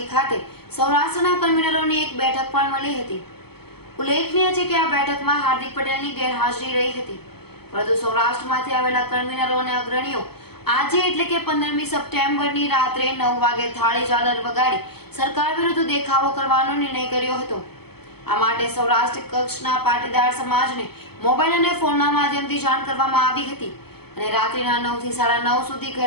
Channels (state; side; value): late; right; 0.96 ms